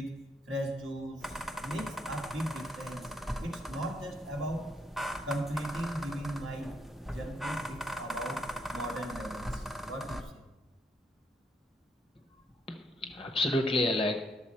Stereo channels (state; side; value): normal; both; correlation 0.74